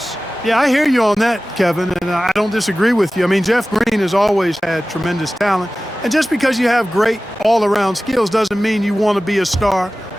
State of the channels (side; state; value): both; normal; correlation 0.96